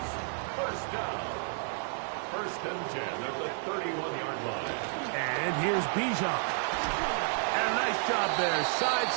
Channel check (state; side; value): silent; left; 57 dB below the other